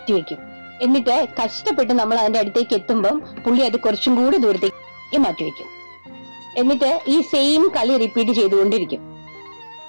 എന്നിട്ട് കഷ്ടപ്പെട്ട് നമ്മൾ അതിന്റെ അടുത്തേക്ക് എത്തുമ്പം പുള്ളി അത് കുറച്ചും കൂടി ദൂരത്തേക്ക് മാറ്റിവെക്കും. എന്നിട്ട് ഈ സെയിം കളി റിപ്പീറ്റ് ചെയ്തുകൊണ്ടിരിക്കും.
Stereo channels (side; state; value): both; inverted; correlation -1.00